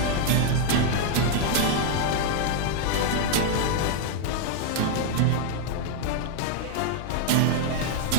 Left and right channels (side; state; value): both; different; correlation 0.00